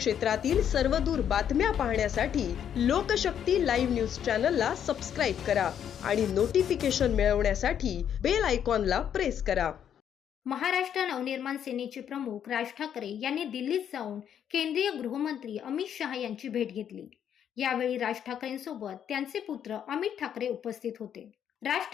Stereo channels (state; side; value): quieter; right; 9.1 dB